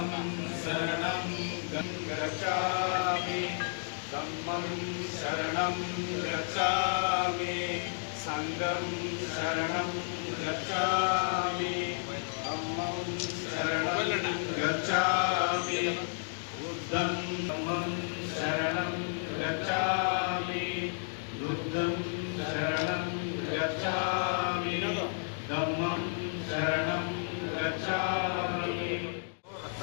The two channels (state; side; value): silent; right; digital silence